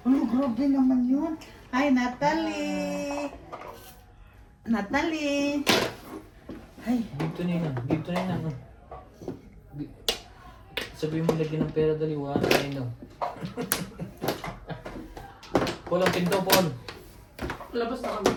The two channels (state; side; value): identical; both; correlation 1.00